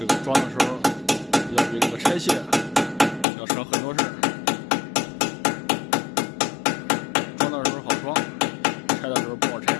个装的时候要比这个拆卸要省很多事儿。装的时候好装，拆的时候不好拆。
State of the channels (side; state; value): right; drops out; at 3.2 s